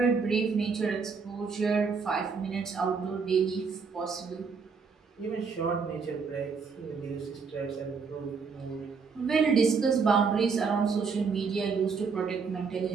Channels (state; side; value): quieter; left; 5.2 dB